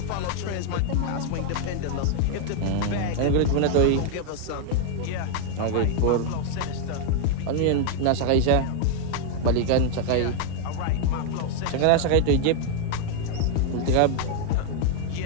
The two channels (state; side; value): different; both; correlation 0.00